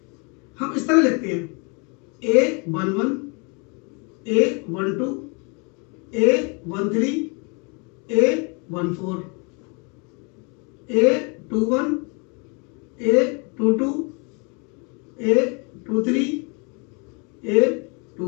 हम इस तरह लिखते हैं A11 A12 A13 A14 A21 A22 A23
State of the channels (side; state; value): right; quieter; 33.1 dB